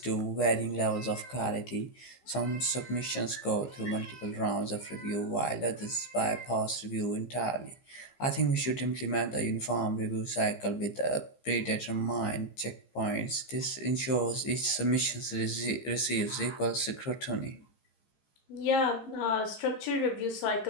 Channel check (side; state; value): right; late; 15 ms